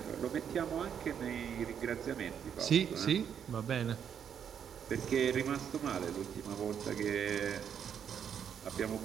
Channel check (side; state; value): left; quieter; 8.2 dB